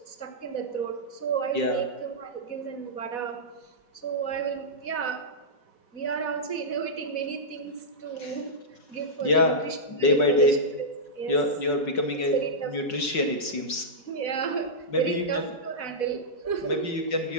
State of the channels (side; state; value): right; late; 5.4 ms